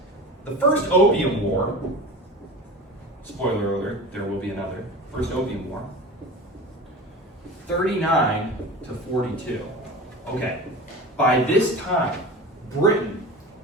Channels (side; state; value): both; normal; correlation 0.33